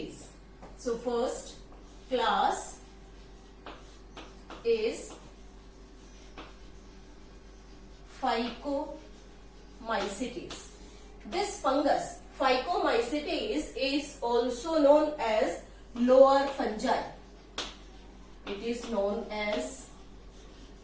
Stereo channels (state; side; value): identical; both; correlation 1.00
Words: So first class is Phycomycetes. This fungus Phycomycetes is also known as lower fungi. It is known as